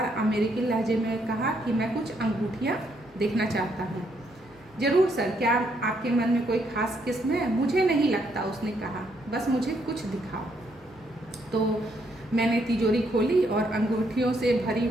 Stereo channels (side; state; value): left; noise; hum, 29 dB below the sound